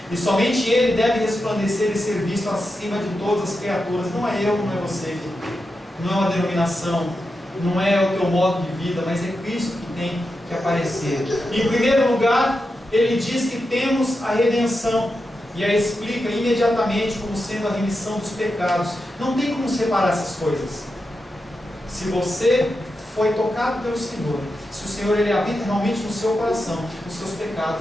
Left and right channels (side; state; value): both; normal; correlation 0.89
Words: E somente Ele deve resplandecer e ser visto acima de todas as criaturas. Não é eu, não é você, não é uma denominação, não é o teu modo de vida, mas é Cristo que tem que aparecer. Em primeiro lugar, ele diz que temos a redenção, e a explica imediatamente como sendo a remissão dos pecados. Não tem como separar essas coisas. Se você foi tocado pelo Senhor, se o Senhor ele habita realmente no seu coração, os seus